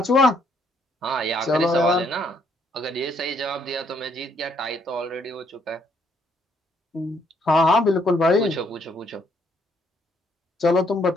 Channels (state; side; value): normal; both; correlation 0.70